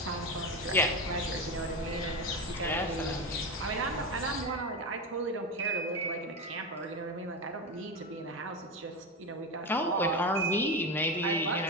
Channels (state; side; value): normal; both; correlation 0.18